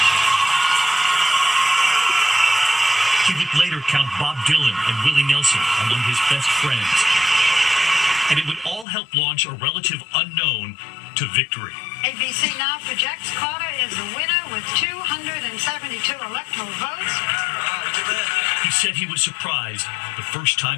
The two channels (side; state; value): right; drops out; at 8.8 s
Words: He would later count Bob Dylan and Willie Nelson among his best friends. And it would all help launch a relative unknown to victory. ABC now projects Carter is the winner with 272 electoral votes. He said he was surprised the first